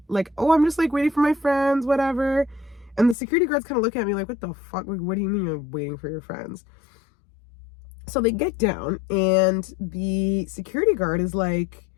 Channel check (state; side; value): drops out; right; at 3.2 s